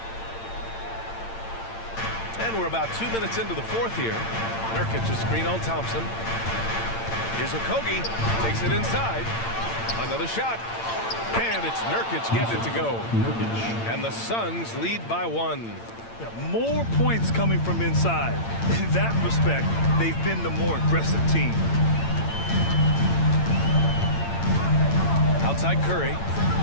And we're about 2 minutes into the fourth here. Nurkic a screen on Thompson. Here's Okogie. Takes it inside. Another shot. And it's Nurkic getting it to go. And the Suns lead by 1. More points coming from inside. In that respect, they've been the more aggressive team. Outside Curry.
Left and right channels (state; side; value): late; right; 8.8 ms